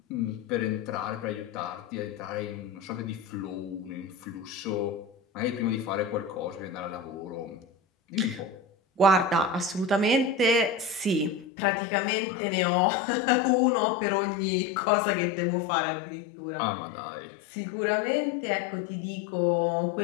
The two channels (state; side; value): drops out; right; at 11.5 s